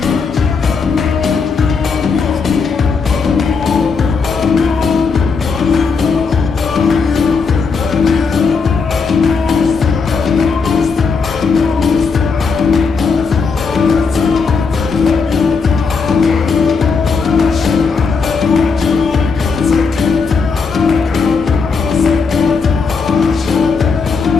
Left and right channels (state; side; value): quieter; right; 5.0 dB